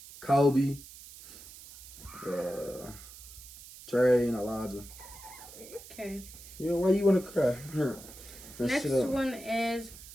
Kobe, Trey, and Elijah. Okay. Why you want to cry? Next one is,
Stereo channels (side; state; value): right; noise; hiss, 17 dB below the sound